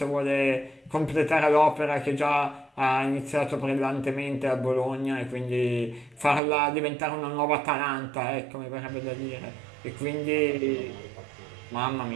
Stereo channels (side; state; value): left; drops out; at 6.4 s